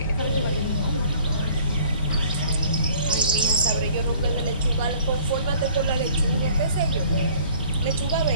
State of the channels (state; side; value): inverted; both; correlation -0.54